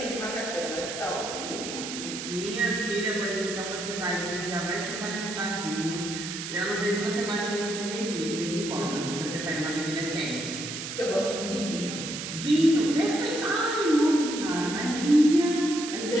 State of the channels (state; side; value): noise; right; hiss, 7 dB below the sound